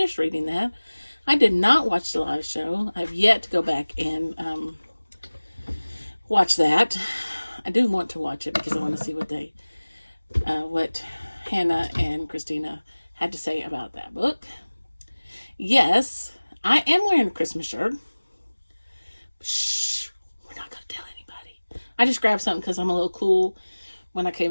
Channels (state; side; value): inverted; both; correlation -1.00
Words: reading that. I did not watch the live show. I've yet to go back and watch that. I do want to watch it because I want to see what Hannah and Christina had to say about that book. Yes, I am wearing a Christmas shirt. Shh, we're not going to tell anybody. I just grabbed something because I'm a little cool when I came